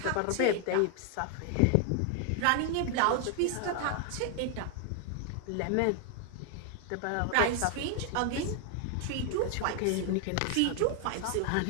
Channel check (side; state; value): both; different; correlation 0.00